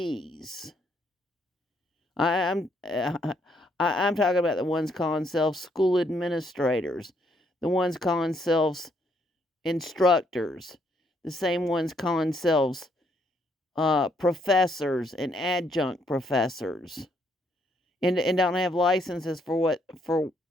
I'm I'm talking about the ones calling themselves school administrators, the ones calling themselves instructors, the same ones calling themselves professors and adjunct professors, and don't have licenses for what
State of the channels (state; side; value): normal; both; correlation 0.72